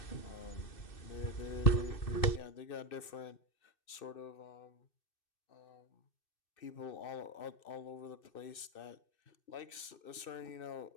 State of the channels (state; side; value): late; right; 2.6 ms